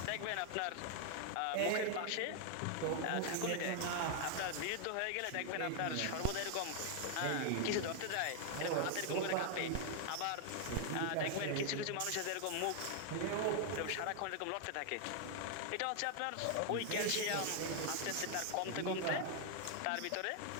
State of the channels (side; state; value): both; different; correlation 0.00